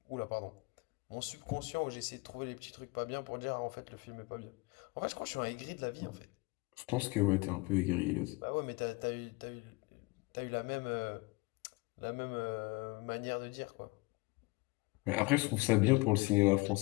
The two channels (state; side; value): quieter; right; 25.3 dB